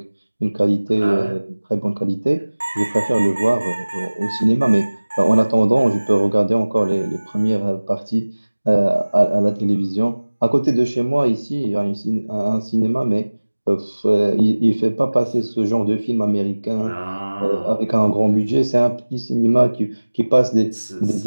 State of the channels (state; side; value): inverted; both; correlation -1.00